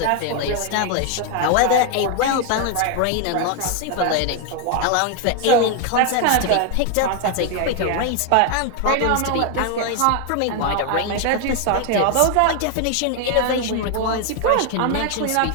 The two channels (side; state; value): both; different; correlation 0.01